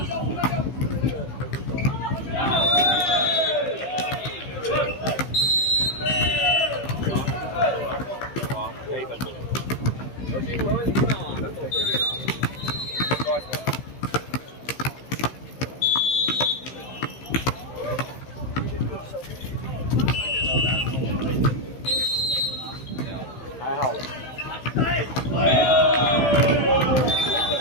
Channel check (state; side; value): late; right; 15 ms